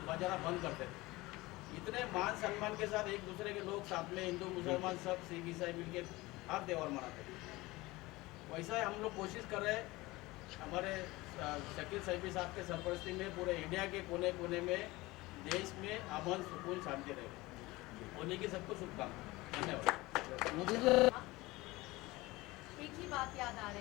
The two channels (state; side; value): quieter; right; 20.7 dB